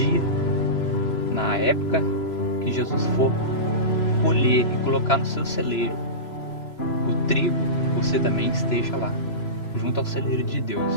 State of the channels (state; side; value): late; right; 3.0 ms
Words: na época que Jesus for colher e colocar no seu celeiro. O trigo, você também esteja lá, junto ao celeiro de Deus,